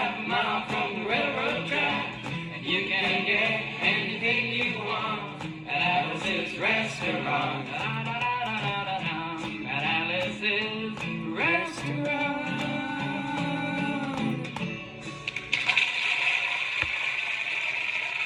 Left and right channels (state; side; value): identical; both; correlation 1.00